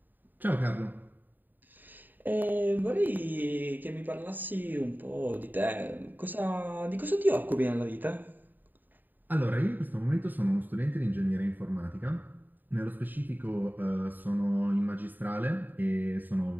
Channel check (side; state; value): left; late; 0.089 ms